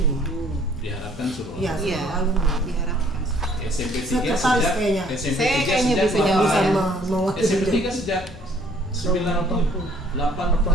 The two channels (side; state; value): both; normal; correlation 0.59